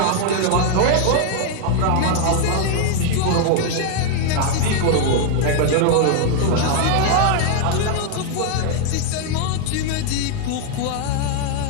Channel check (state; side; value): different; both; correlation 0.00